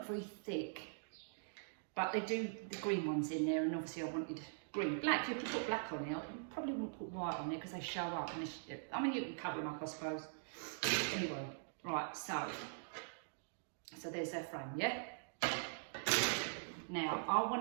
very thick. But they do the green ones in there, and obviously I wanted green. Black, you could put black on there. You probably wouldn't put white on there because they show up. And I mean, you can cover them up, I suppose. Anyway, right, so there's their frame, yeah? Now, I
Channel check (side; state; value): left; silent; digital silence